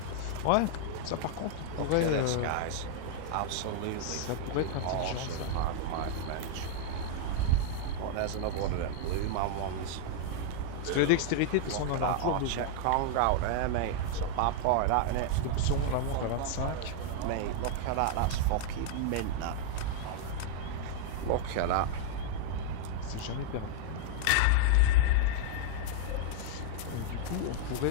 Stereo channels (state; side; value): different; both; correlation 0.00